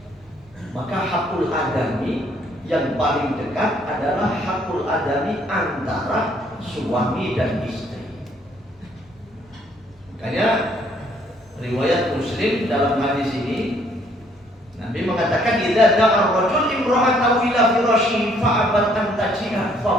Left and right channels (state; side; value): normal; both; correlation 0.65